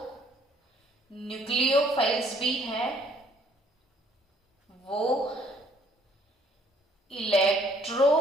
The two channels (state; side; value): normal; both; correlation 0.62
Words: न्यूक्लियोफाइल्स भी है, वो